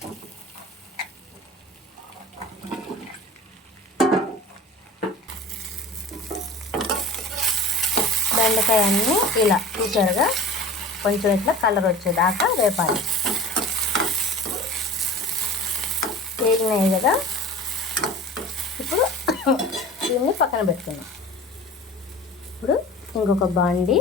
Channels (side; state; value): both; normal; correlation 0.38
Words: బెండకాయ అన్నీ ఇలా చూసారుగా కొంచెం ఇట్లా కలర్ వచ్చేదాకా వేపాలి. వేగినాయి కదా, ఇప్పుడు దీన్ని పక్కన పెట్టుకున్నాం. ఇప్పుడు ఇంకొక బాండి,